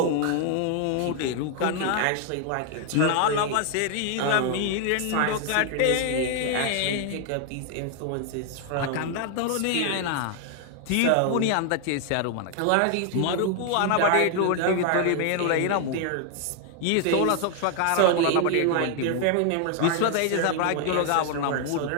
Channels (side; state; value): both; different; correlation 0.00